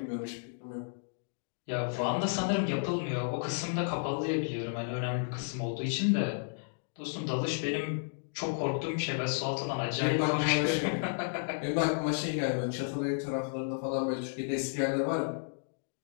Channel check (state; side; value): silent; right; digital silence